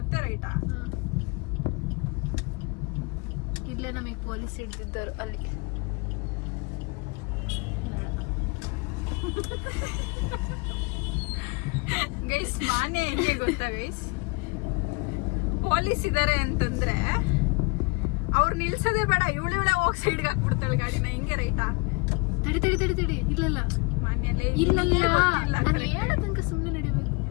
ರೈಟಾ? ಇಲ್ಲೇ ನಮಗೆ ಪೊಲೀಸ್ ಹಿಡ್ದಿದ್ದರು ಅಲ್ಲಿ. ಗೈಸ್ ಮಾನ್ಯ ಹೆಂಗೆ ಗೊತ್ತಾ ಗೈಸ್? ಪೊಲೀಸ್ ಇದಾರೆ ಅಂತಂದ್ರೆ ಅವ್ರು ನಿಲ್ಸೋದೇ ಬೇಡ, ಇವಳೆ ಹೋಗಿ ಸೈಡ್ಗೆ ಹಾಕ್ಬಿಡ್ತಾಳೆ ಗಾಡಿನ. ಹಿಂಗೆ ರೈಟಾ? ತಡಿ. ಇಲ್ಲಲ್ಲ ಮಾನ್ಯಲೇ ಇಲ್ಲ, ನಾನು ಹೇಳೋ ತನಕ ಸುಮ್ಮನೆ ನಡಿಬೇಕು.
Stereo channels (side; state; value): right; quieter; 28.9 dB